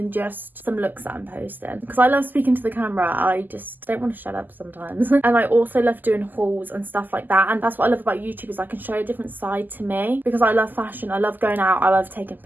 just some looks that I'm posting, because I love speaking to the camera. I just don't want to shut up sometimes. And I also love doing hauls and stuff like that, and that's what I love about YouTube, is I can show a different side to me, because I love fashion, I love going out, I love taking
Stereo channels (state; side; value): late; left; 0.087 ms